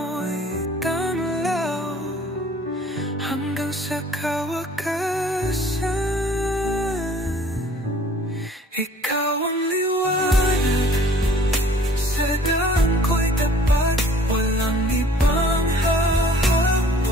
tamlaw hanggang sa kawakasan. Ikaw ang liwanag, sa daan ko'y tapat, walang ibang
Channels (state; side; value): normal; both; correlation 0.53